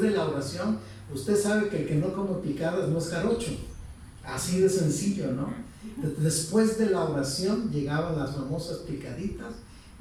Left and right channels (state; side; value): identical; both; correlation 1.00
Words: la oración, usted sabe que el que no come picadas no es jarocho. Así de sencillo, ¿no? Después de la oración llegaban las famosas picaditas